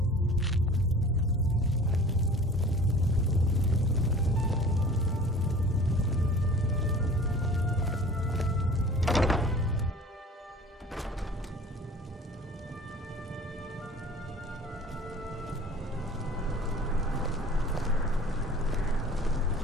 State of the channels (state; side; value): normal; both; correlation 0.44